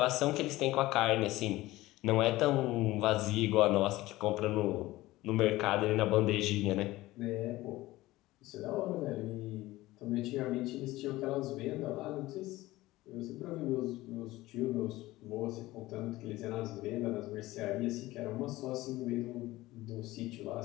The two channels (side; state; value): right; quieter; 17.9 dB